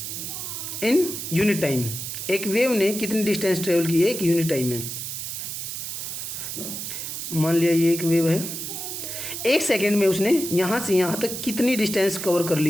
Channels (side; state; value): right; noise; hiss, 6 dB below the sound